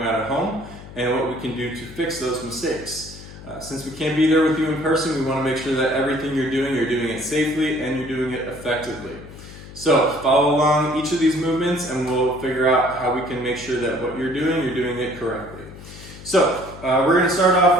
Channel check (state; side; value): noise; left; hum, 16 dB below the sound